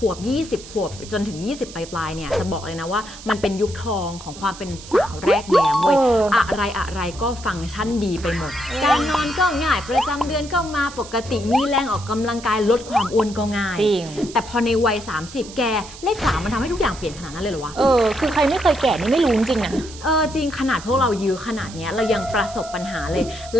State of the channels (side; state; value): right; noise; hiss, 16 dB below the sound